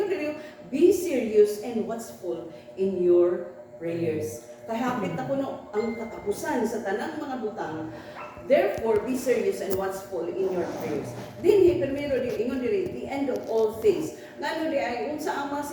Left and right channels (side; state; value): both; identical; correlation 1.00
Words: dili, be serious and watchful in your prayers. Kahapit na kuno ang katapusan sa tanang mga butang. Therefore, be serious and watchful in your prayers. Dinhi primero di ingon diri, the end of all things. Ngano di ay unsa ang mga